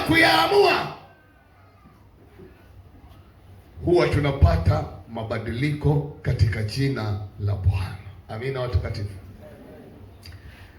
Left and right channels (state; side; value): identical; both; correlation 1.00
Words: huwa tunapata mabadiliko katika jina la Bwana. Amina watakatifu.